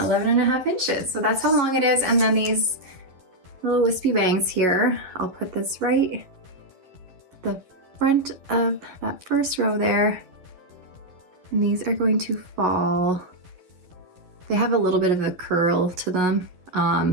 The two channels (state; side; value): late; left; 11 ms